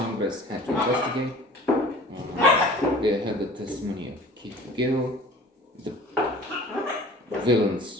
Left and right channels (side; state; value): both; normal; correlation 0.45